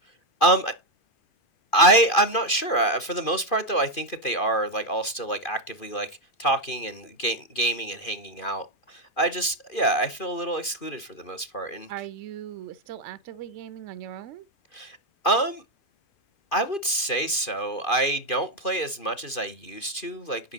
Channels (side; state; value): right; late; 2.5 ms